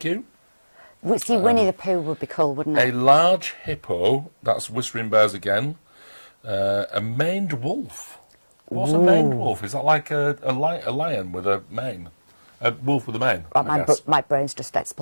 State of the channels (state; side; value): inverted; both; correlation -1.00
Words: you. See, Winnie the Pooh would be cool, wouldn't A it? large hippo. That's Whispering Bears again. A maned wolf. What's a maned wolf? Is that like a lion with a mane? A wolf with a mane, I guess. My brain's just